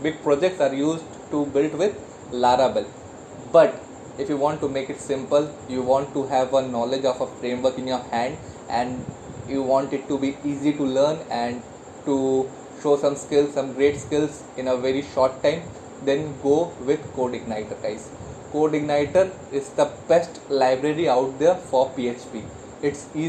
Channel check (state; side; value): identical; both; correlation 1.00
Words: projects are used to build with Laravel. But if you want to make it simple, you want to have a knowledge of a framework in your hand, and you want it to be easy to learn and to show some skills, some great skills in a very short time, then go with CodeIgniter, guys. CodeIgniter is the best library out there for PHP. It's